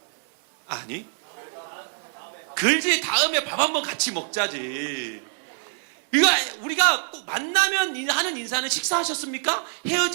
아니. 글지 다음에 밥 한번 같이 먹자지. 우리가 꼭 만나면 하는 인사는 식사하셨습니까?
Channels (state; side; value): silent; left; 60 dB below the other